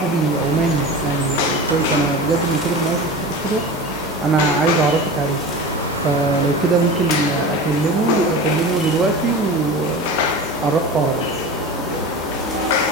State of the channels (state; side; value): normal; both; correlation 0.31